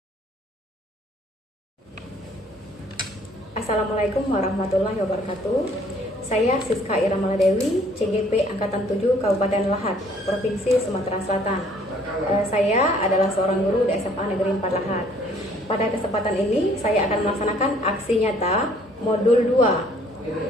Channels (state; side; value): normal; both; correlation 0.59